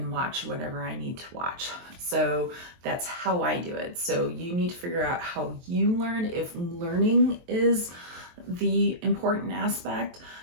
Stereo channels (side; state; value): left; late; 23 ms